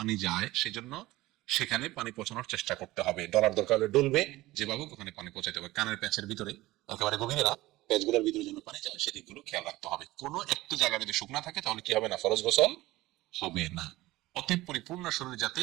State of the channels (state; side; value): quieter; left; 18.3 dB